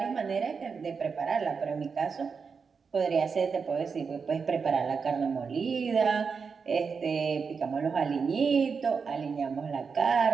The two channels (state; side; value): quieter; left; 5.5 dB